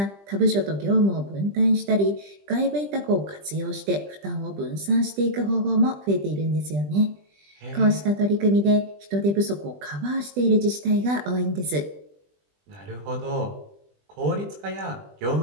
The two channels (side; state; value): left; late; 20 ms